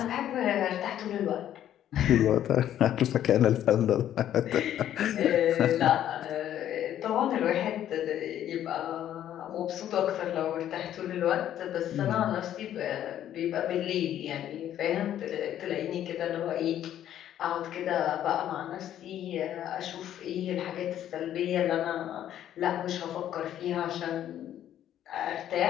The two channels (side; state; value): right; quieter; 11.2 dB